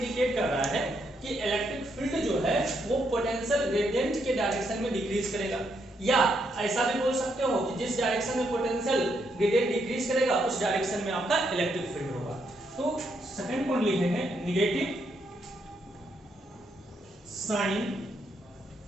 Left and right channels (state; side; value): normal; both; correlation 0.77